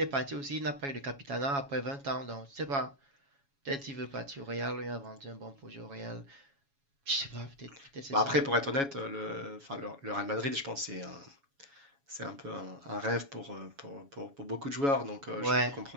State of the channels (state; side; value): late; left; 7.2 ms